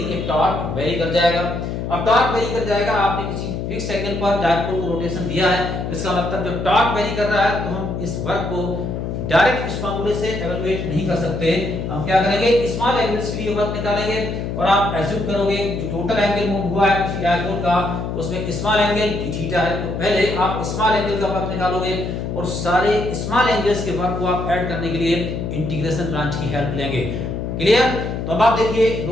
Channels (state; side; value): noise; left; hum, 4 dB below the sound